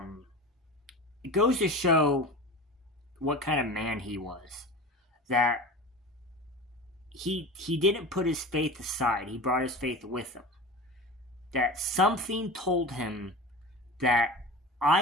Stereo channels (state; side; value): normal; both; correlation 0.32